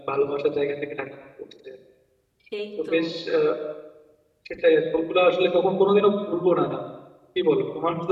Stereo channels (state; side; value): identical; both; correlation 1.00